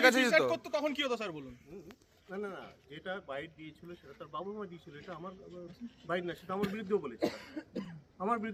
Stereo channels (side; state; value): both; identical; correlation 1.00